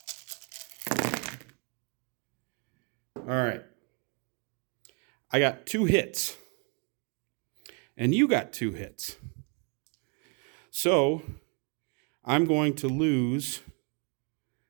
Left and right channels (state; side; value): quieter; left; 35.1 dB